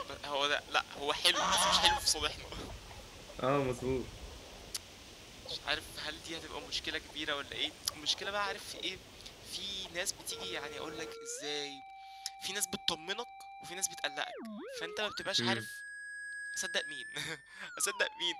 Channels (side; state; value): both; identical; correlation 1.00